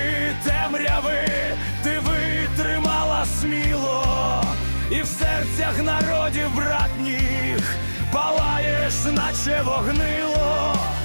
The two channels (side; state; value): both; inverted; correlation -1.00